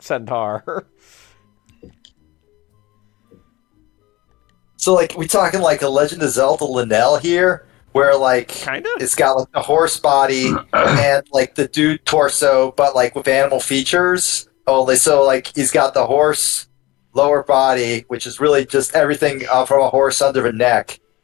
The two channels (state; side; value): quieter; right; 20.0 dB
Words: So, like, we talking like a Legend of Zelda Linnell here, where like Kind of. it's got like the horse body and like the dude torso, but like with animal features. Only so like he's got the horse lower body, which is really just everything from a horse under a neck,